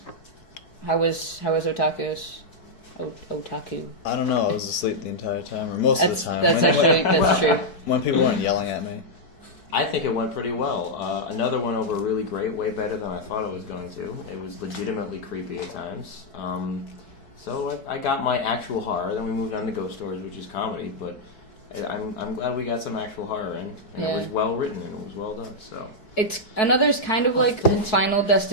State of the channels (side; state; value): right; late; 4.6 ms